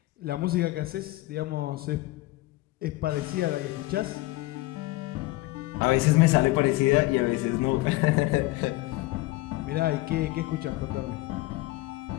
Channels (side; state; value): right; quieter; 19.4 dB